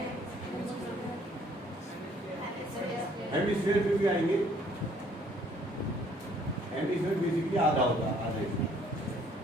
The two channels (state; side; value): normal; both; correlation 0.61